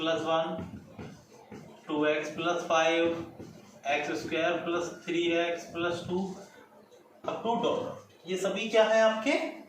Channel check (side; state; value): both; identical; correlation 1.00